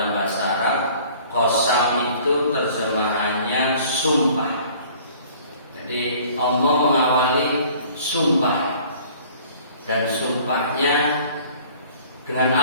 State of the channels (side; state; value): both; inverted; correlation -0.52